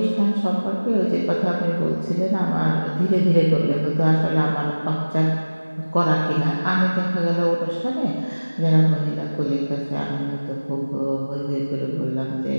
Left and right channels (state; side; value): inverted; both; correlation -1.00